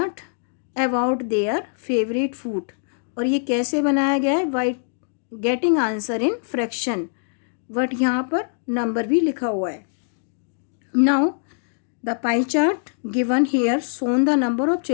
about their favourite food. और ये कैसे बनाया गया है? By getting answer in fraction. But यहाँ पर नंबर भी लिखा हुआ है. Now the pie chart given here shown the number of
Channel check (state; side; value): silent; right; digital silence